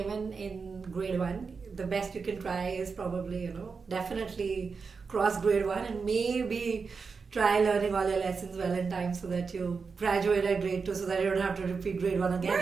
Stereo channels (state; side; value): quieter; left; 5.1 dB